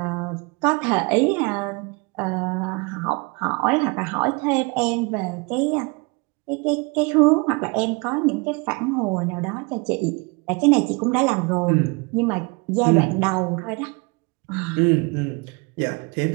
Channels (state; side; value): quieter; left; 29.0 dB